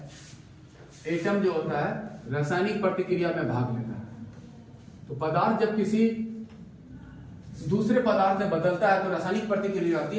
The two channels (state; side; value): identical; both; correlation 1.00